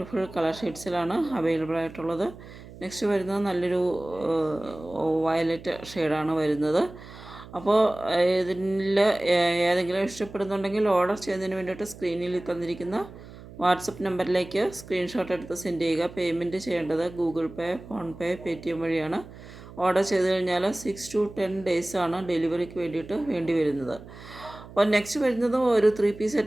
കളർ ഷെയ്ഡ്സിലാണ് അവൈലബിൾ ആയിട്ടുള്ളത്. നെക്സ്റ്റ് വരുന്നത് നല്ലൊരു വയലറ്റ് ഷെയ്ഡാണ് വരുന്നത്. അപ്പോൾ ഇതിൽ ഏതെങ്കിലും ഇഷ്ടപ്പെടുന്നുണ്ടെങ്കിൽ ഓർഡർ ചെയ്യുന്നതിന് വേണ്ടിയിട്ട് സ്ക്രീനിൽ തന്നിരിക്കുന്ന വാട്സപ്പ് നമ്പറിലേക്ക് സ്ക്രീൻഷോട്ട് എടുത്ത് സെൻഡ് ചെയ്യുക. പേയ്മെൻറ്റ് ചെയ്യേണ്ടത് ഗൂഗിൾ പേ, ഫോൺ പേ, പേടിഎം വഴിയാണ്. ഓർഡർ ചെയ്ത് കഴിഞ്ഞാൽ 6 to 10 ഡേയ്സാണ് ഡെലിവറിക്ക് വേണ്ടിയിട്ട് വേണ്ടി വരുന്നത്. അപ്പോൾ നെക്സ്റ്റ് വരുന്നത് ഒരു 3 പീസ്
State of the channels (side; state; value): right; noise; hum, 17 dB below the sound